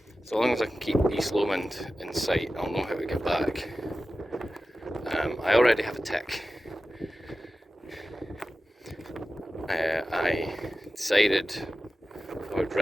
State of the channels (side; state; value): both; normal; correlation 0.94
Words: so long as I can keep East Lomond in sight, I'll know how to get back. I already have a tick. I decided I would